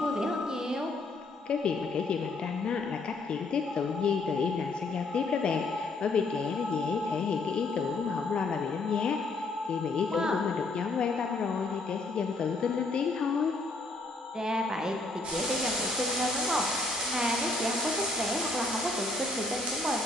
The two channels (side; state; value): right; quieter; 3.2 dB